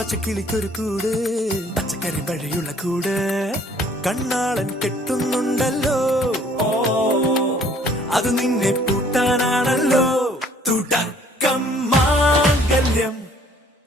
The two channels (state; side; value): normal; both; correlation 0.59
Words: കൂട് പച്ചക്കരിമ്പഴയുള്ള കൂട് കണ്ണാളൻ കെട്ടുന്നുണ്ടല്ലോ അത് നിന്നെ പൂട്ടാനാണല്ലോ തുടക്കം മാംഗല്യം